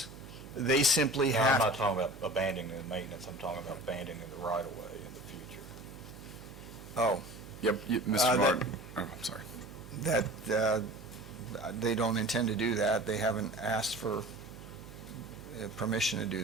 They simply No, have... I'm not talking about abandoning the maintenance, I'm talking about abandoning the right-of-way in the future. Oh, Yep, Mr. Martin. Oh, I'm sorry. that, they don't intend to do that. They haven't asked for permission to do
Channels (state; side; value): noise; right; hum, 15 dB below the sound